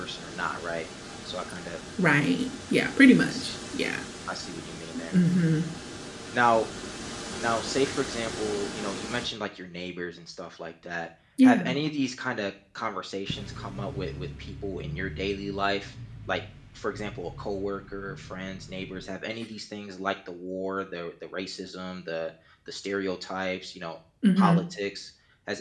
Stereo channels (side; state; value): both; identical; correlation 1.00